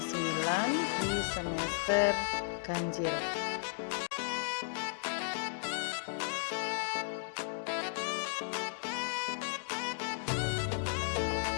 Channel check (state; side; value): silent; right; digital silence